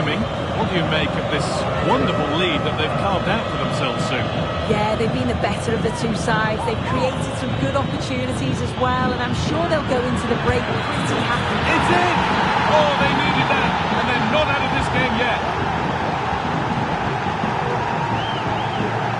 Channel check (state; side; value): identical; both; correlation 1.00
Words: What do you make of this wonderful lead that they've carved out for themselves soon? Yeah, they've been the better of the two sides. They've created some good opportunities as well, and I'm sure they'll go into the break pretty happy. It's in! Oh, they needed that, and they're not out of this game yet.